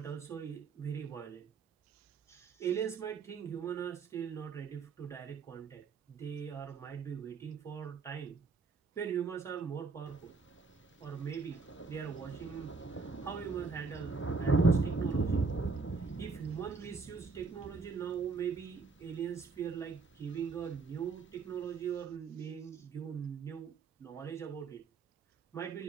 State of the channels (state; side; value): quieter; left; 4.6 dB